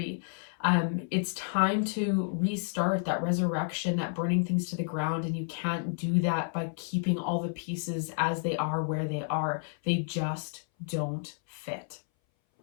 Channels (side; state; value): right; silent; 57 dB below the other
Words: It's time to restart that resurrection, that burning things to the ground. And you can't do that by keeping all the pieces as they are, where they are. They just don't fit.